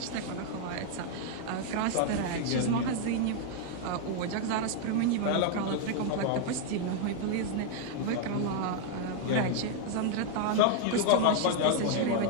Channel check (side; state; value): both; different; correlation 0.00